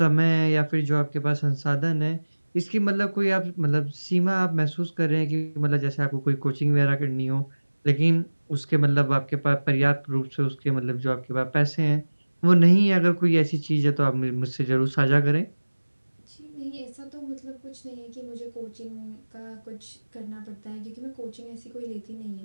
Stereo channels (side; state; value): both; inverted; correlation -1.00